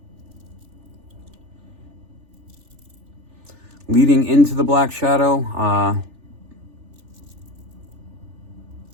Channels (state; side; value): late; left; 3.4 ms